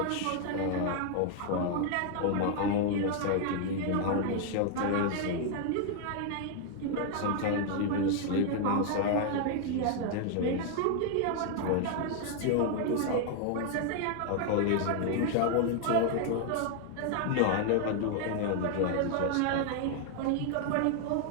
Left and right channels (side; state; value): both; different; correlation 0.00